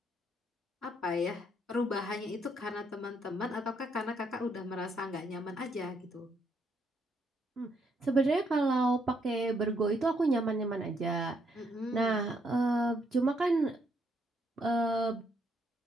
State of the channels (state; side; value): normal; both; correlation 0.73